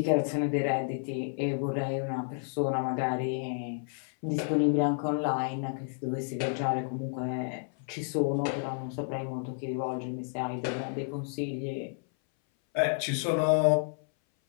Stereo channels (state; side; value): silent; right; 57 dB below the other